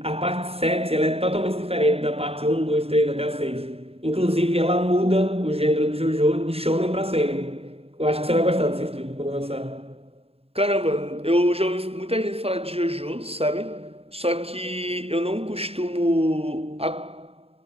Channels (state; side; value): late; left; 0.29 ms